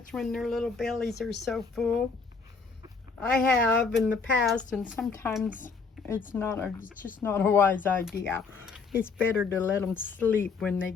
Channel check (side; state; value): right; quieter; 4.9 dB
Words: when their little bellies are so full. I have in the past, and sometimes it's just not a wise idea. It's better to let them sleep when they